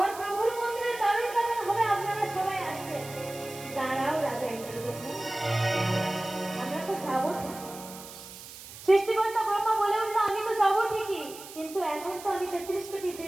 প্রভুর মন্দিরের দ্বার উদ্ঘাটন হবে, আপনারা সবাই আসবেন। দাঁড়াও রাজা ইন্দ্রদুম্ন, আমরা তো যাবো। সৃষ্টিকর্তা ব্রহ্মা বলে উঠলো, আমি তো যাবো ঠিকই, কিন্তু এখন তো আমি 33 কোটি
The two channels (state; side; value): noise; right; hiss, 15 dB below the sound